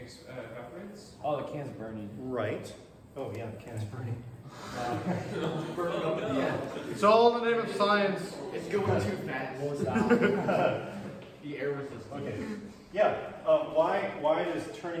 evaporates. Oh, the can's burning. Right. Oh yeah, the can's burning. It's all in the name of science. It's going too fast. The air resistance. Okay. Yeah. Why does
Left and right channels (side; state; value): both; identical; correlation 1.00